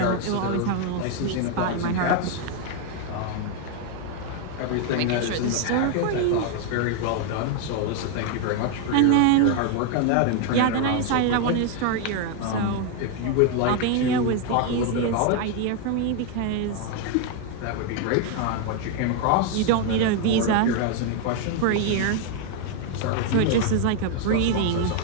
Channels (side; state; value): both; different; correlation 0.01